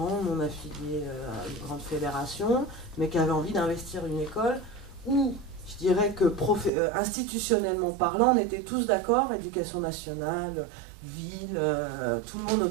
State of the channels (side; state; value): left; drops out; at 6.7 s